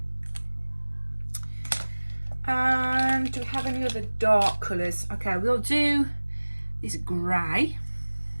And do we have any other dark colours? Okay, we'll do this grey.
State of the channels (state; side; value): inverted; both; correlation -1.00